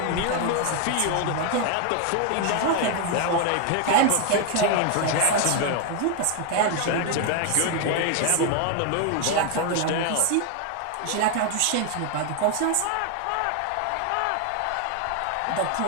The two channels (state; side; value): different; both; correlation 0.01